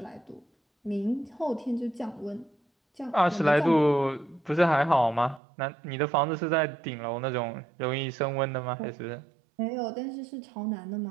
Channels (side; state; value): left; drops out; at 5.4 s